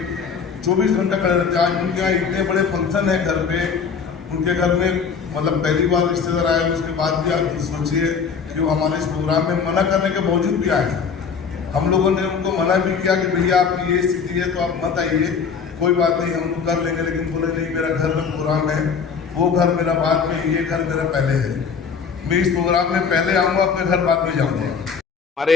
24 घंटा खड़े रहते हैं। आज उनके यहाँ इतने बड़े फंक्शन है घर पे, उनके घर में मतलब पहली बार रिश्तेदार आए, उसके बाद भी आप सोचिए कि वो हमारे इस प्रोग्राम में मना करने के बावजूद भी आए। हम लोगों ने उनको मना भी किया कि भैया आपकी ये स्थिति है तो आप मत आइए, कोई बात नहीं हम लोग कर लेंगे। लेकिन बोले नहीं, मेरा घर में प्रोग्राम है, वो घर मेरा बाद में, ये घर मेरा पहले है। मैं इस प्रोग्राम में पहले आऊँगा, अपने घर बाद में जाऊँगा।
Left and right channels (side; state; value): right; quieter; 6.1 dB